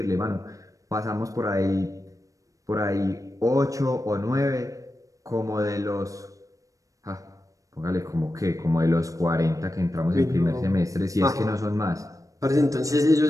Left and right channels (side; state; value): left; late; 0.16 ms